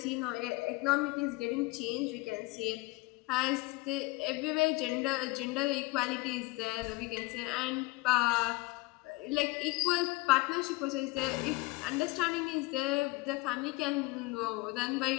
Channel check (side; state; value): right; quieter; 23.2 dB